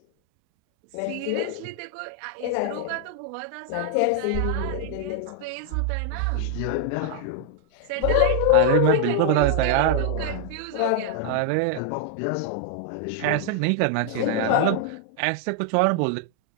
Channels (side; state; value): both; different; correlation 0.00